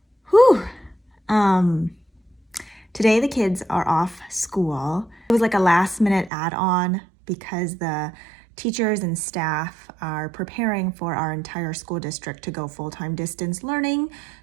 Whew. Today the kids are off school. It was like a last minute add-on because the teachers and staff are preparing for our entire school district to go full-time distance learning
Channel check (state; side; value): drops out; left; at 6.3 s